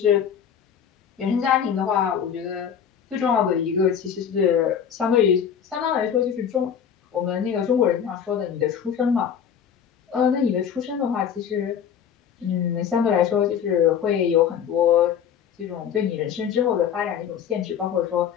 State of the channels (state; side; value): quieter; right; 8.2 dB